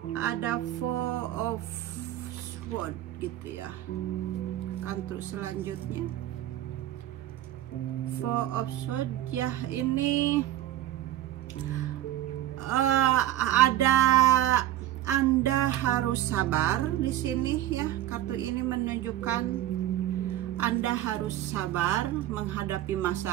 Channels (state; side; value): quieter; left; 13.4 dB